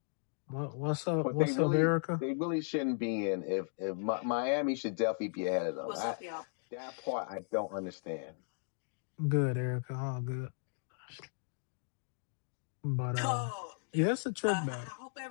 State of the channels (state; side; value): silent; right; digital silence